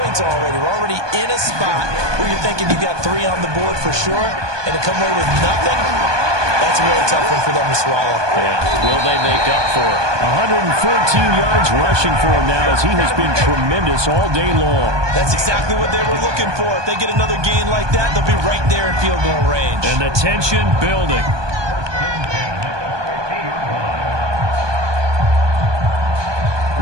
already. We're already in a spot where you're thinking you got 3 on the board for sure, and to come away with nothing, that's a really tough one for them to swallow. Yeah. Will they make up for it? 114 yards rushing for him now as he has been tremendous all day long. That's exactly what they were looking for. If they get another gain like that, they'll be right there in field goal range. And the tension building.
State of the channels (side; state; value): left; late; 1.2 ms